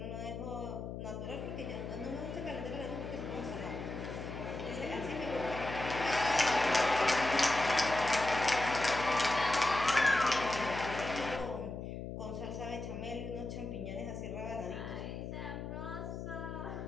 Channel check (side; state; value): left; noise; hum, 7 dB below the sound